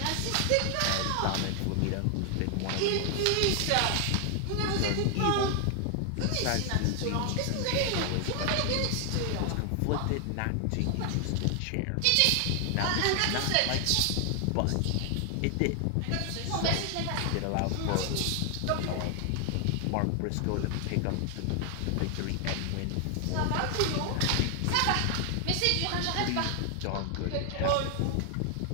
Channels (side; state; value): both; different; correlation 0.00